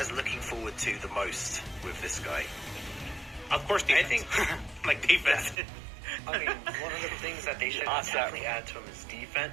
looking forward to the most with this guy? Of course, defense. I think, like defense. I mean, one of the things that they should definitely add to him is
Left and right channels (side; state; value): left; drops out; at 5.6 s